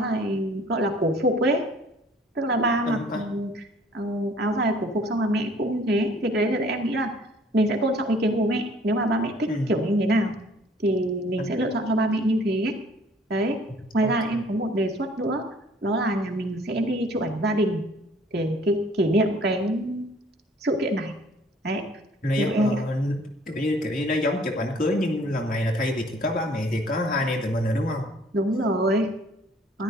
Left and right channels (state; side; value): normal; both; correlation 0.56